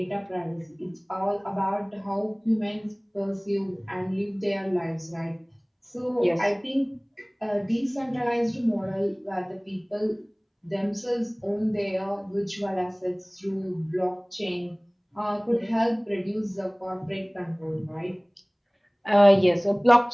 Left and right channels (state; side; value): identical; both; correlation 1.00